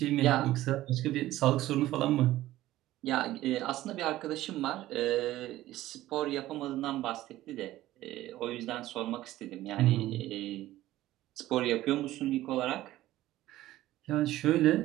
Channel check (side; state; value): left; quieter; 15.4 dB